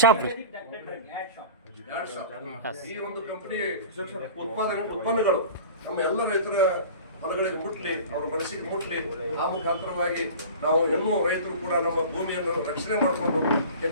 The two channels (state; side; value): inverted; both; correlation -0.38